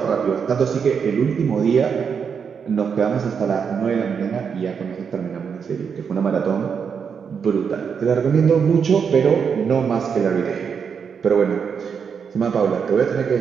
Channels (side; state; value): left; quieter; 6.6 dB